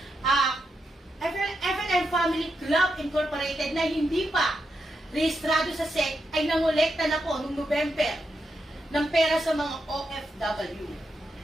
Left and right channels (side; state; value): both; normal; correlation 0.85